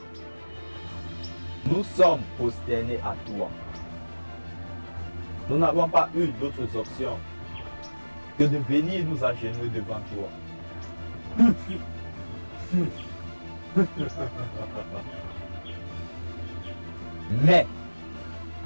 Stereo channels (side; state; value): both; inverted; correlation -1.00